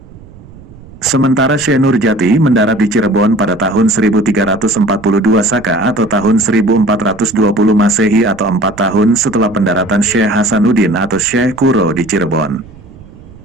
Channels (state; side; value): noise; right; rumble, 20 dB below the sound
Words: Sementara Syekh Nurjati mendarat di Cirebon pada tahun 1342 Saka atau tahun 1420 Masehi atau 4 tahun setelah pendaratan Syekh Hasanuddin atau Syekh Kuro di Cirebon.